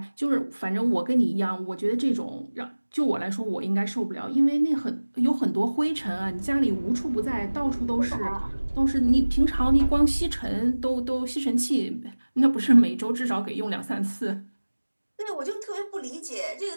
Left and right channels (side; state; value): both; inverted; correlation -1.00